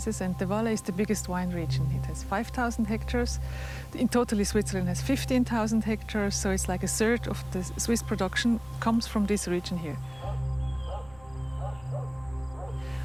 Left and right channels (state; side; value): noise; left; rumble, 25 dB below the sound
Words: and the Valais is the biggest wine region. It has 5,000 hectares. In total Switzerland has 15,000 hectares, so it's like a third of the Swiss production comes from this region here.